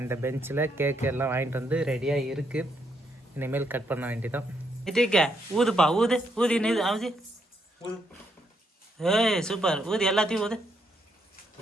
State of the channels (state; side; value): normal; both; correlation 0.76